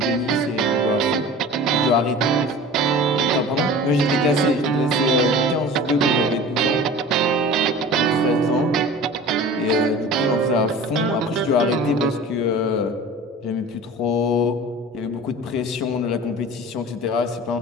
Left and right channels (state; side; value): normal; both; correlation 0.39